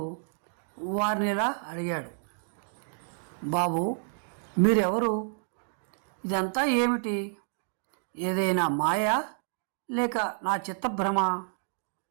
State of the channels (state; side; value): silent; left; digital silence